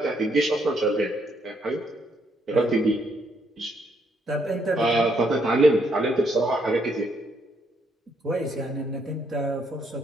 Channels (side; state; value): both; normal; correlation 0.73